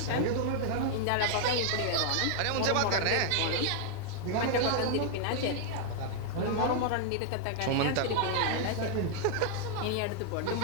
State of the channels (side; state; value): both; different; correlation 0.00